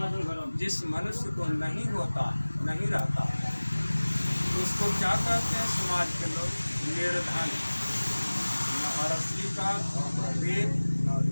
जिस मनुष्य को नहीं होता, नहीं रहता, उसको क्या कहते हैं समाज के लोग? निर्धन। न हरस्वी का न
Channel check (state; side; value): inverted; both; correlation -1.00